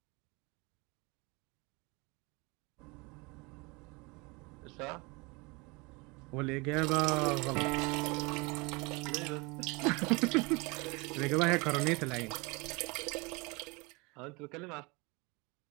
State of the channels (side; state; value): left; quieter; 27.1 dB